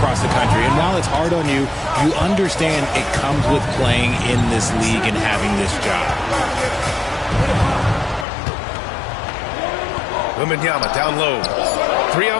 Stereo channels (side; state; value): right; drops out; at 8.2 s